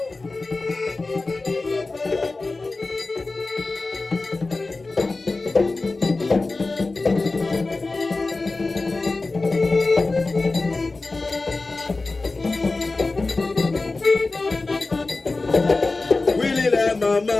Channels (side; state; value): right; quieter; 3.5 dB